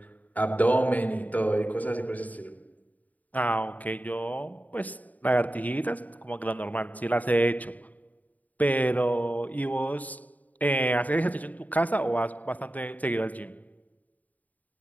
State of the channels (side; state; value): right; late; 0.076 ms